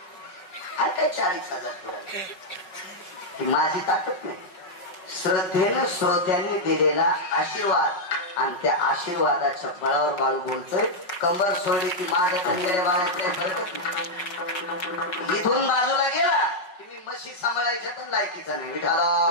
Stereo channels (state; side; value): late; right; 5.4 ms